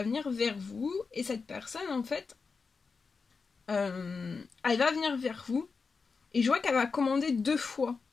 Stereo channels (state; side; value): quieter; right; 4.8 dB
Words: venir vers vous. Et cette personne, en fait, elle va venir vers vous. Et je vois qu'elle va commander 2 fois.